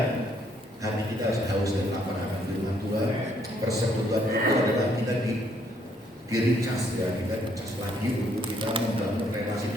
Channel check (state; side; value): normal; both; correlation 0.68